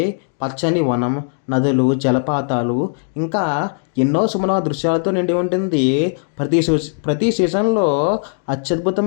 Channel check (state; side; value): silent; right; 63 dB below the other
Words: పచ్చని వనం, నదులు, జలపాతాలు ఇంకా ఎన్నో సుమన దృశ్యాలతో నిండి ఉంటుంది. ప్రతి సీజన్లో